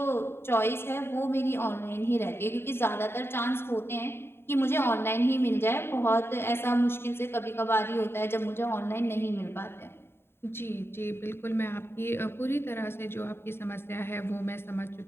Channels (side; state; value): right; late; 0.11 ms